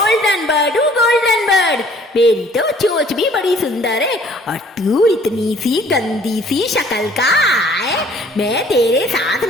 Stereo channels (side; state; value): both; normal; correlation 0.56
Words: बर्ड हूँ, गोल्डन बर्ड। मेरी तो चोंच भी बड़ी सुंदर है, और तू इतनी सी गंदी सी शक्ल का है, मैं तेरे साथ